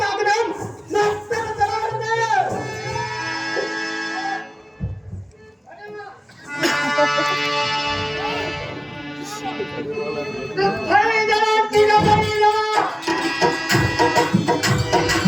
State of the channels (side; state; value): both; identical; correlation 1.00